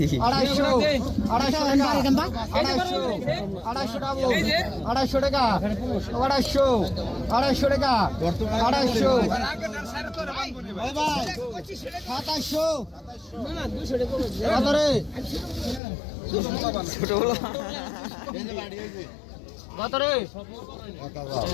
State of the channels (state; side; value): drops out; right; at 15.8 s